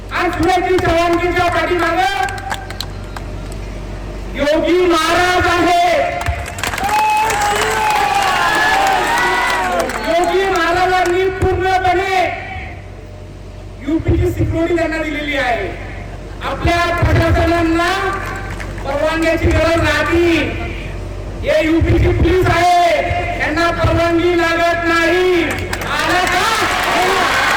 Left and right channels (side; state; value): both; identical; correlation 1.00